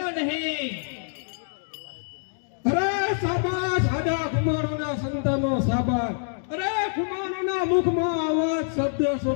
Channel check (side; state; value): right; silent; digital silence